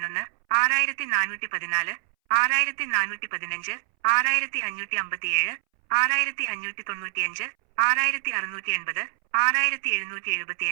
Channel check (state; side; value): silent; left; 61 dB below the other